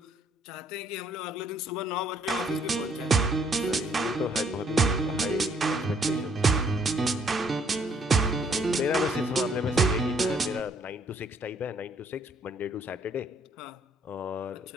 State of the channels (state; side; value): normal; both; correlation 0.66